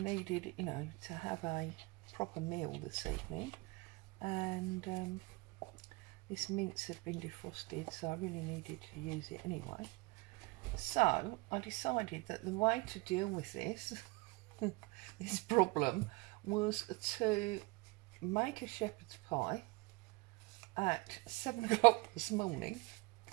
you know, to have a proper meal this evening. And this mince had been defrosted, so I really needed to use it anyway. So I decided that the way to deal with this this problem was to make a shepherd's pie at 7 o'clock this morning,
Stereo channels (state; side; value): quieter; left; 25.9 dB